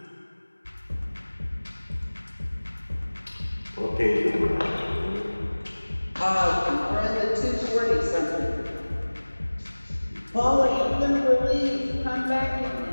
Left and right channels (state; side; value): inverted; both; correlation -1.00